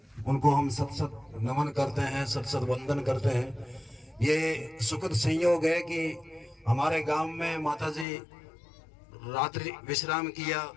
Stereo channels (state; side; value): drops out; right; at 8.1 s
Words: उनको हम सत सत नमन करते हैं, सत सत वंदन करते हैं। ये सुखद संयोग है कि हमारे गांव में माता जी रात्रि विश्राम किया,